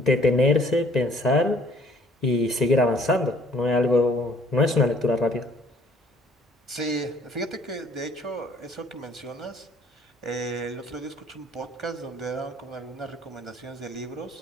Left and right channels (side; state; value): both; normal; correlation 0.58